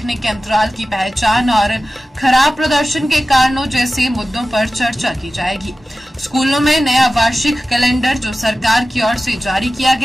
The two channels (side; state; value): both; normal; correlation 0.95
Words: के अंतराल की पहचान और खराब प्रदर्शन के कारणों जैसे मुद्दों पर चर्चा की जाएगी। स्कूलों में नया वार्षिक कैलेंडर जो सरकार की ओर से जारी किया